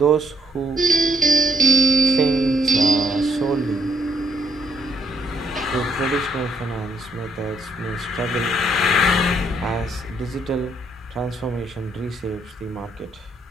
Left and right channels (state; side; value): normal; both; correlation 0.71